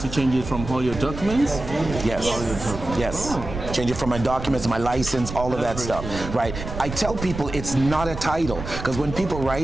change it from all your documents? Yes. Yes. Change it from my documents, my license, all of that stuff. Right. I tell people it's not a title, because when people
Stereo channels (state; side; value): noise; right; rumble, 9 dB below the sound